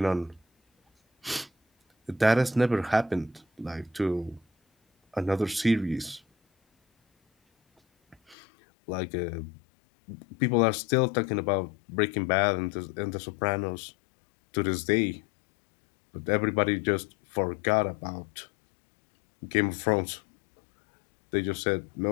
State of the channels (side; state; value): right; drops out; at 8.3 s